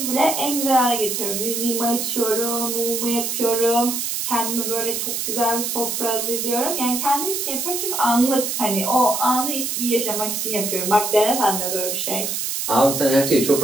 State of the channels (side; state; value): right; noise; hiss, 2 dB below the sound